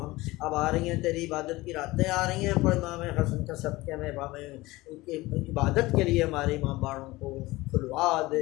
ہم اب آ رہی ہیں تیری عبادت کی راتیں آ رہی ہیں، پر امام حسن کا صدقے میں ان کی عبادت کے لیے ہمارے امام باڑوں کو کھلوا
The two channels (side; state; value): right; quieter; 20.0 dB